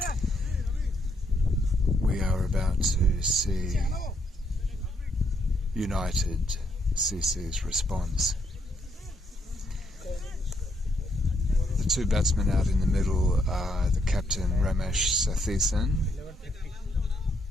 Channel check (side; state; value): both; normal; correlation 0.74